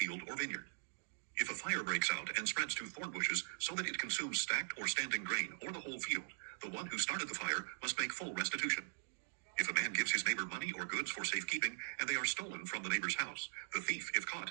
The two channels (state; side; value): silent; left; digital silence